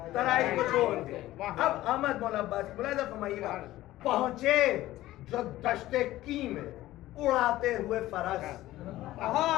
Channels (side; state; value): right; quieter; 15.7 dB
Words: तराई को छोड़ के। अब अहमद मौला अब्बास मुलाहिज़ा फरमाइएगा। पहुंचे जो दश्ते की में उड़ाते हुए फरस,